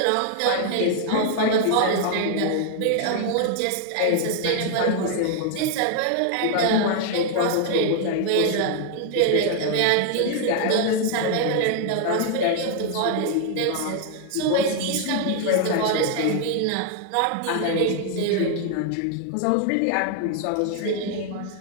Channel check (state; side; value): different; both; correlation 0.00